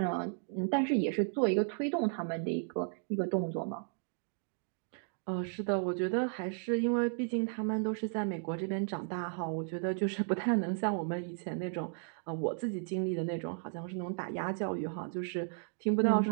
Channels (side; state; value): left; silent; 55 dB below the other